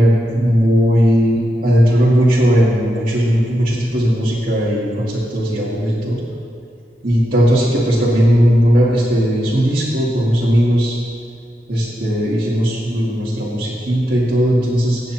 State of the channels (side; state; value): both; normal; correlation 0.85